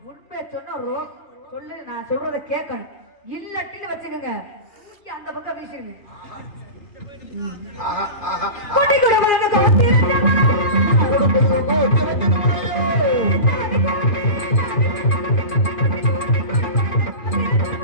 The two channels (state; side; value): late; right; 2.5 ms